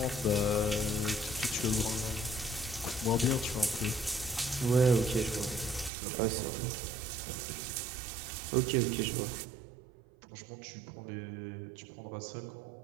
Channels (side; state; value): left; drops out; at 5.9 s